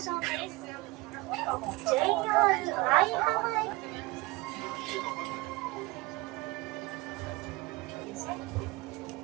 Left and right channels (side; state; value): left; quieter; 22.4 dB